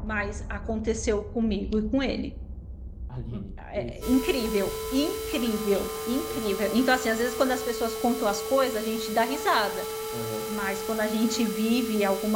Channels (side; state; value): both; identical; correlation 1.00